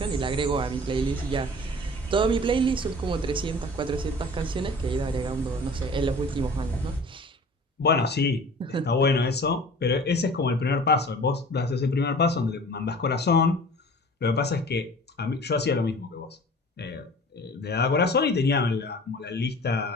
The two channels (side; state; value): both; normal; correlation 0.44